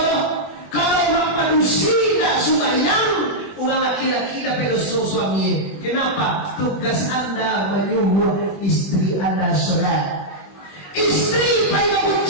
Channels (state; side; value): late; right; 21 ms